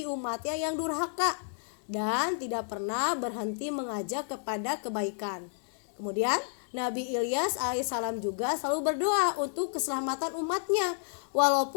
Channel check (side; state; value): right; silent; digital silence